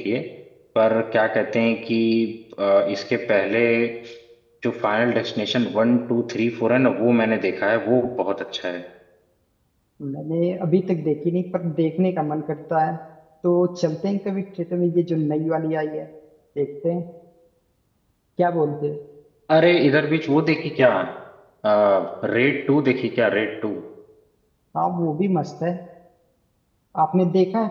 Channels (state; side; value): identical; both; correlation 1.00